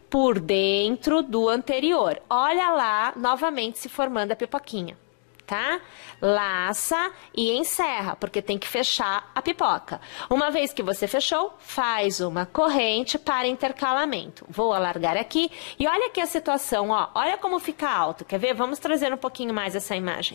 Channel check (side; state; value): right; silent; digital silence